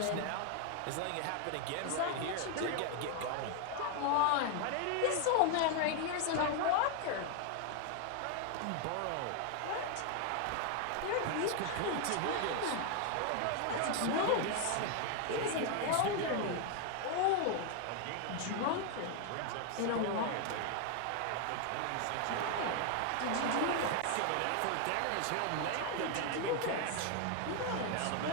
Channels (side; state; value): both; different; correlation 0.01